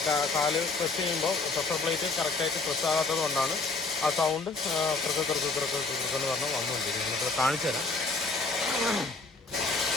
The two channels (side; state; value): right; quieter; 3.7 dB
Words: കാല് പ്രസ് ചെയ്യുമ്പോൾ പ്രഷർ പ്ലേറ്റ് കറക്റ്റായിട്ട് പ്രസ് ആകാത്തത് കൊണ്ടാണ് ആ സൗണ്ട് കിറക്കെന്ന് പറഞ്ഞ് വന്നുകൊണ്ടിരിക്കുന്നത്. നമുക്ക് കാണിച്ചു തരാം.